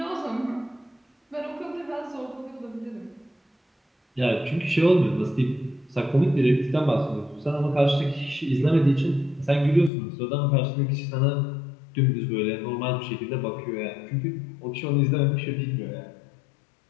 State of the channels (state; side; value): drops out; right; at 9.9 s